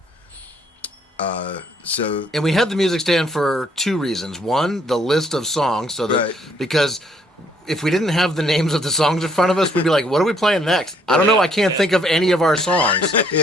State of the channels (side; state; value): both; normal; correlation 0.66